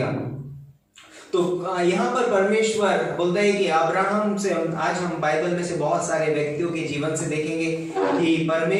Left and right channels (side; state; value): both; identical; correlation 1.00